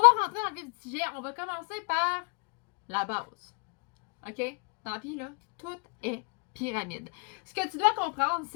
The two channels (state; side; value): quieter; right; 32.6 dB